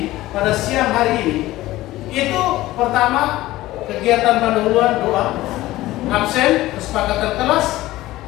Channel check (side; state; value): right; quieter; 16.8 dB